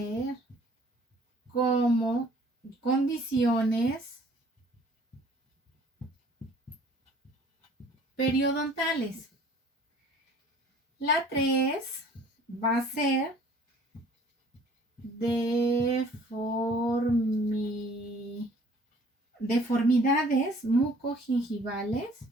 como condiciones periodontales. La 3 va a ser deformidades mucogingivales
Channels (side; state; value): both; normal; correlation 0.54